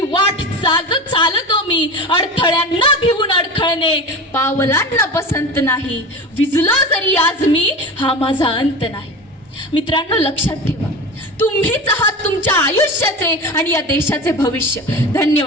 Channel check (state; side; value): normal; both; correlation 0.30